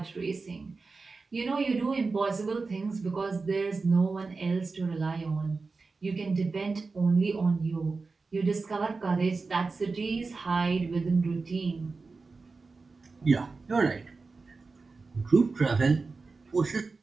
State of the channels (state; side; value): quieter; left; 4.1 dB